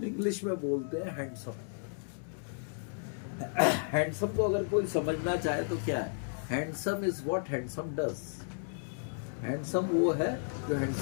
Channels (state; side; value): silent; right; digital silence